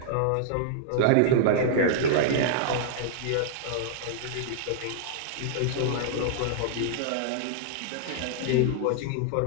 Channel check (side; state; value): both; different; correlation -0.01